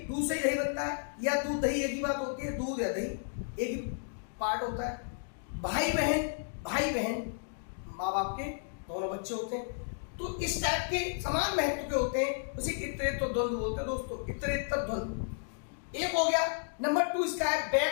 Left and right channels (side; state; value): right; silent; digital silence